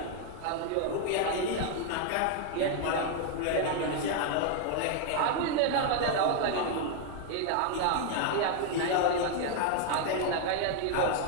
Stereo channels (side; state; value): both; different; correlation 0.00